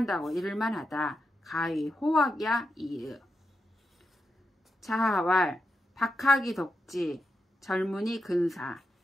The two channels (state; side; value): normal; both; correlation 0.86